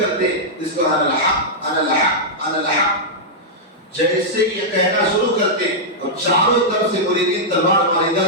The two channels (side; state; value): both; normal; correlation -0.08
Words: جس کو انا الحق جیسے یہ کہنا شروع کرتے اور چاروں طرف سے مریدین تلوار مار،